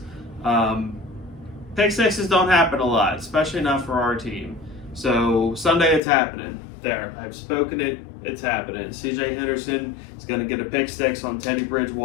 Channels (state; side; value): drops out; right; at 6.0 s